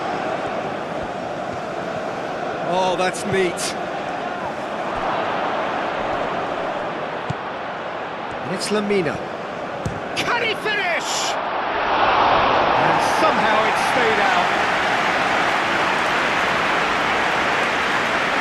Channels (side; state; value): both; identical; correlation 1.00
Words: Oh, that's neat. And it's Lamina. Can he finish? And somehow it stayed out.